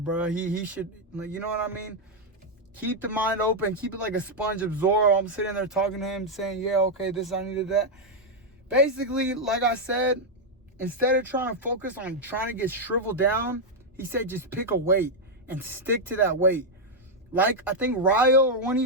He should, like, you know what I mean? Keep the mind open. Keep it like a sponge, absorb. I'm sitting there talking to him, saying, yeah, okay, this, I needed that. Basically, like I said, instead of trying to focus on trying to get shriveled down, he said just pick a weight and stick to that weight. Like, I think Ryo or one of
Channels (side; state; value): both; normal; correlation -0.01